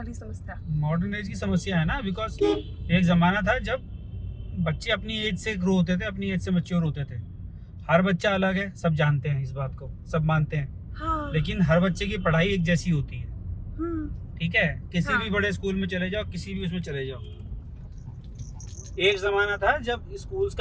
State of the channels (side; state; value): both; identical; correlation 1.00